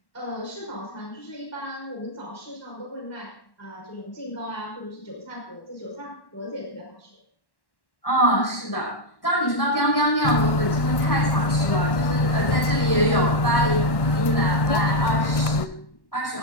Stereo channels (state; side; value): late; right; 1.1 ms